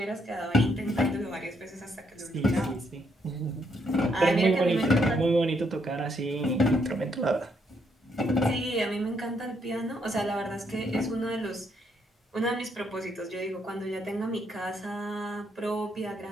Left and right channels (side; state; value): both; normal; correlation 0.74